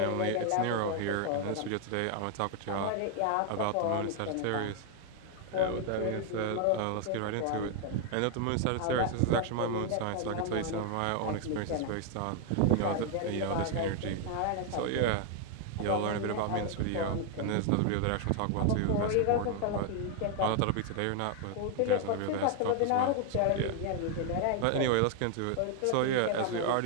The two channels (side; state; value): both; different; correlation 0.00